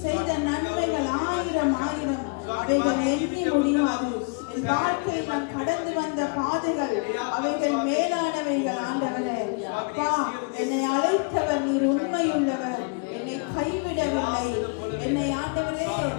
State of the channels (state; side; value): quieter; right; 33.9 dB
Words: செய்த நன்மைகள் ஆயிரம் ஆயிரம், அவைகள் எண்ணி முடியாது. என் வாழ்க்கையில் நான் கடந்து வந்த பாதைகள் அவைகள் மேலானவைகள். ஆண்டவரே, அப்பா என்னை அழைத்தவர் நீர் உண்மையுள்ளவர், என்னை கைவிடவில்லை. என்னை ஆண்டவரே